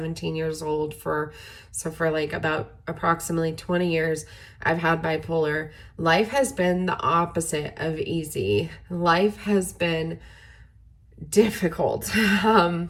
years old. For like about approximately 20 years, I've had bipolar. Life has been the opposite of easy. Life has been difficult. It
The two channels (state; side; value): identical; both; correlation 1.00